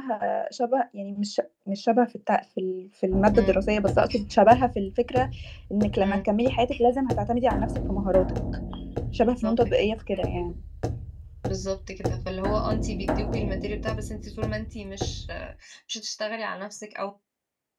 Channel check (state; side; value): identical; both; correlation 1.00